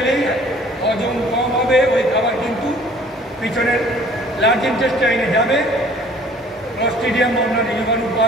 হজম কম হবে, ওই খাবার কিন্তু পিছনের লার্জ ইন্টেস্টাইনে যাবে, ক্লস্ট্রিডিয়াম অন্যান্য জীবাণু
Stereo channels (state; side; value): normal; both; correlation 0.53